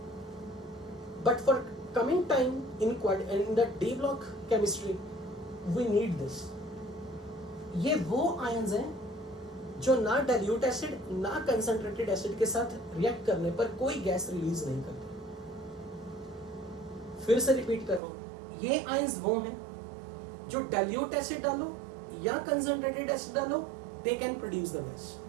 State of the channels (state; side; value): drops out; left; at 18.0 s